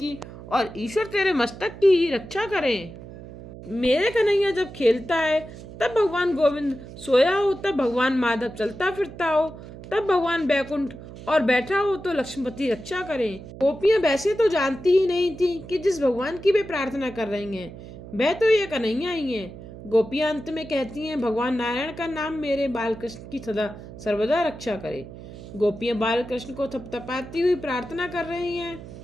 और ईश्वर तेरे मस्तक की रक्षा करें। मेरे कन्हैया जब खेलता है तब भगवान गोविंद सोया हो, तब भगवान माधव चलता फिरता हो, तब भगवान बैकुंठ और बैठा हो तो लक्ष्मीपति रक्षा करें। गोपियां वैसे तो जानती ही नहीं थी कि जिस भगवान की वे प्रार्थना कर रही हैं वह तो ये कन्हैया ही है। गोपियां अंत में कहती हैं, भगवान नारायण का नाम मेरे बालकृष्ण की सदा सर्वदा रक्षा करे। गोपियां बालकृष्ण को थपथपाती हुई प्रार्थना कर रही हैं।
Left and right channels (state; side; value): noise; right; hum, 14 dB below the sound